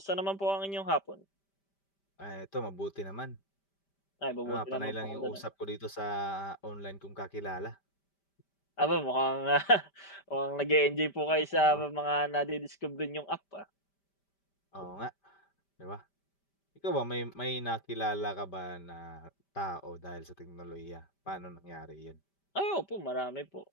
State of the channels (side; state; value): right; late; 5.1 ms